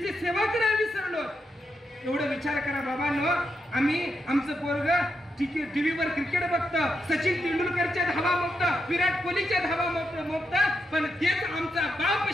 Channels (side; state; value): both; normal; correlation 0.83